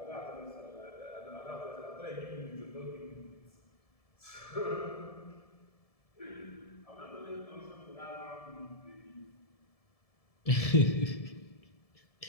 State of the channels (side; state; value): right; late; 1.7 ms